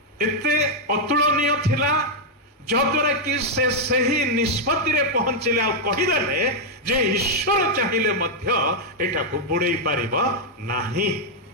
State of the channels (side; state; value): both; normal; correlation -0.01